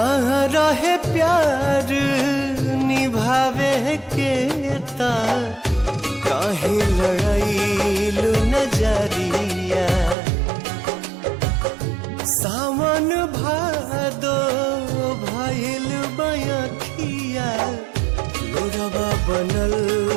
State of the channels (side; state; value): left; drops out; at 10.2 s